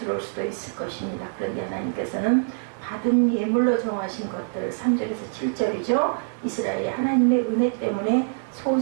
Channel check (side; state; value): left; silent; 62 dB below the other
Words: 수도 있을 것입니다. 그런데 하나님께서는 받은 예물로 정하신 것들 3절에서 7절이죠. 이스라엘이 하나님의 은혜 때문에